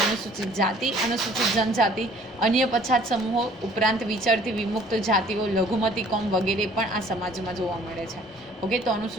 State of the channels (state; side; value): normal; both; correlation 0.55